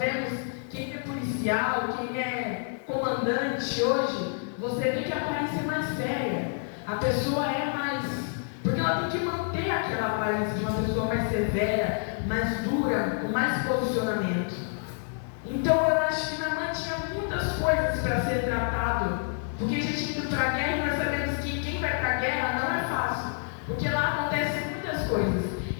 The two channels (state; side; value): silent; right; 56 dB below the other